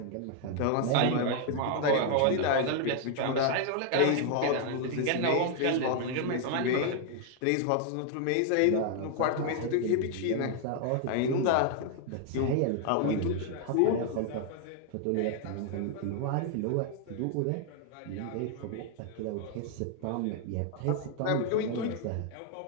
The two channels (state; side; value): different; both; correlation 0.00